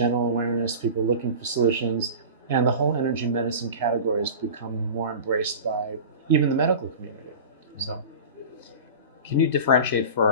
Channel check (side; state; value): both; inverted; correlation -0.34